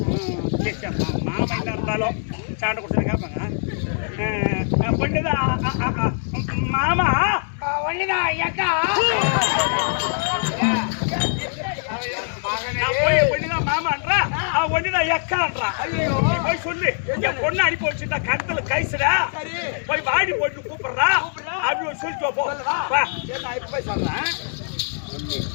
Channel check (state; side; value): silent; right; 63 dB below the other